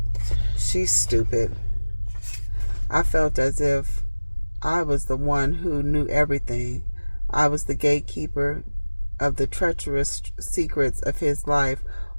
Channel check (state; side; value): inverted; both; correlation -1.00